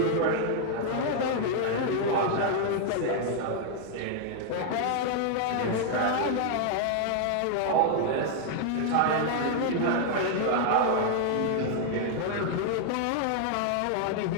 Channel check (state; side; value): different; both; correlation 0.00